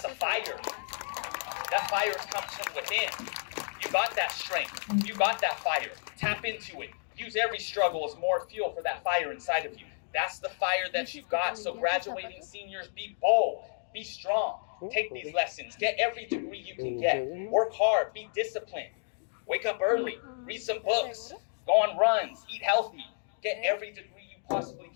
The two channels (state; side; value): silent; right; digital silence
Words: a fire. That fire comes from within. You got that strength. You got that fire. Tap into it. Use every struggle as more fuel for that fire inside of you. That's the fire that you got. So graduating seniors, be bold, be strong. Take these lessons. Get every degree you can get. Work hard. Be disciplined. Wake up early. Read some books. Go on runs. Eat healthy. Get every degree you possibly